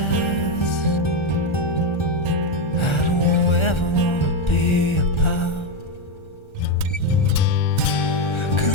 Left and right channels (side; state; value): right; late; 1.3 ms